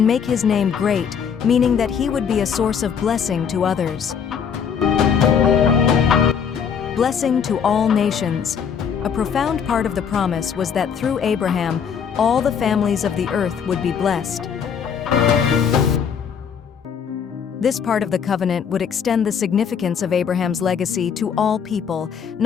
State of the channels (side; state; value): right; quieter; 7.2 dB